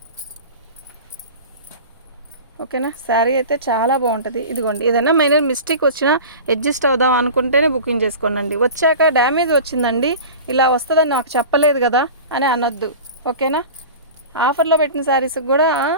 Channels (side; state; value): both; inverted; correlation -0.35